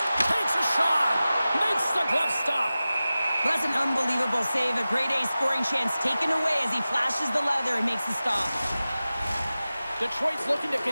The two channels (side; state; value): both; inverted; correlation -0.96